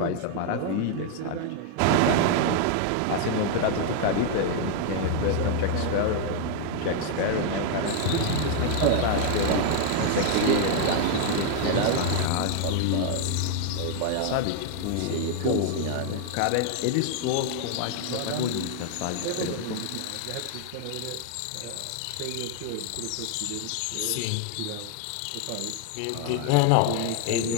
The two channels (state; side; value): different; both; correlation 0.00